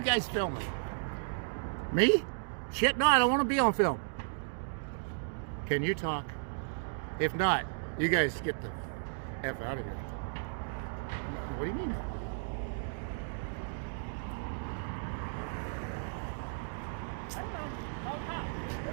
guys filming? Me? Shit, no, I don't want to be on film. Can you talk? If not, you guys get the F out of here. What do you mean? I don't know.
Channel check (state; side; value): silent; left; digital silence